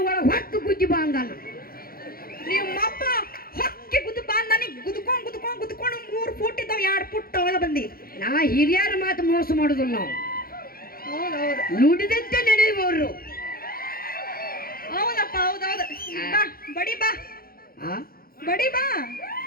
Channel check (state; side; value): late; right; 0.43 ms